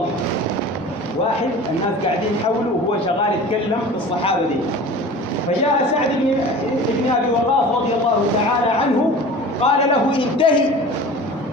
واحد الناس قاعدين حوله وهو شغال يتكلم في الصحابة دي. فجاء سعد بن أبي وقاص رضي الله تعالى عنه قال له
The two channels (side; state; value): both; normal; correlation 0.39